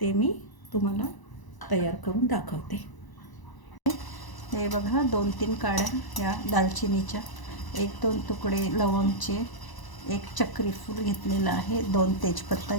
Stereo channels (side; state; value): right; late; 1.0 ms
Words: मी तुम्हाला तयार करून दाखवते. हे बघा 2-3 काड्या या दालचिनीच्या, 1-2 तुकडे लवंगचे, 1 चक्री फूल घेतलेलं आहे, 2 तेजपत्ता